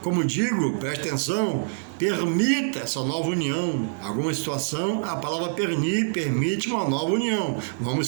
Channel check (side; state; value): left; silent; digital silence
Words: como digo, preste atenção, permita essa nova união. Alguma situação, a palavra permite uma nova união.